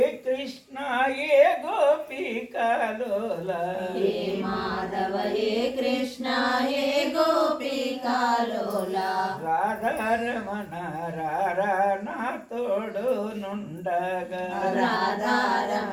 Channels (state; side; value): identical; both; correlation 1.00